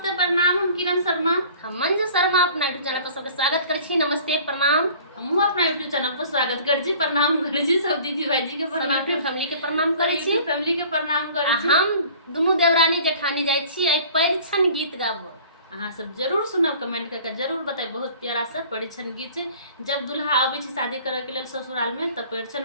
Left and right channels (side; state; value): both; inverted; correlation -0.48